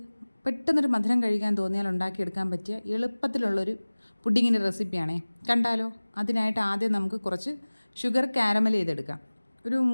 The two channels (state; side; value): inverted; both; correlation -1.00